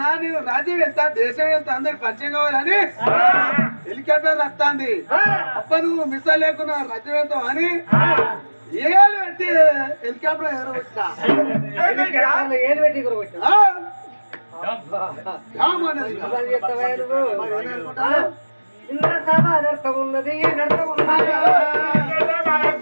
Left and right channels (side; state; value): both; inverted; correlation -1.00